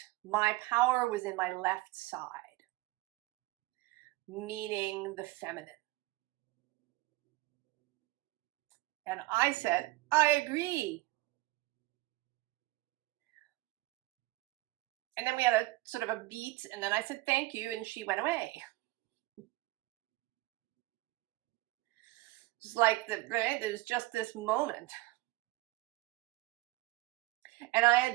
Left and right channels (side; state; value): left; quieter; 20.1 dB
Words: my power was in my left side, meaning the feminine. And I said, I agree. And then we had a sort of a beat, and then I said, thank you, and she went away. Just like there's just this moment. And I had